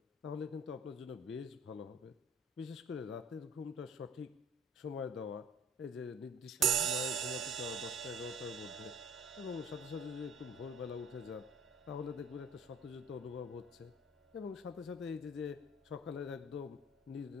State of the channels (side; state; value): both; normal; correlation 0.47